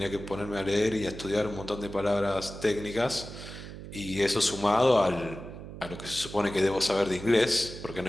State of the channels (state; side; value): noise; right; hum, 12 dB below the sound